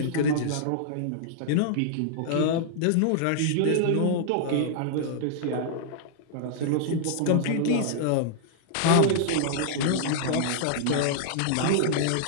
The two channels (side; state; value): both; different; correlation -0.01